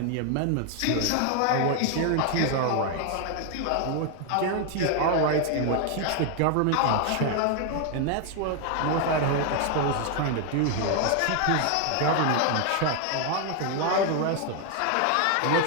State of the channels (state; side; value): different; both; correlation 0.00